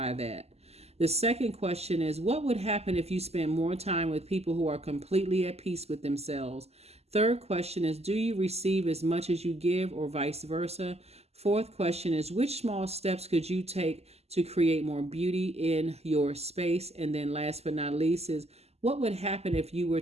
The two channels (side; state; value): left; late; 0.30 ms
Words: that? The second question is, what would happen if you spend more time with people who are completely at peace with themselves? Third question is, do you receive as much as you give, or vice versa? Fourth question is, which small steps could you take to create more beauty in your space? And then last but not least is, what would happen if you were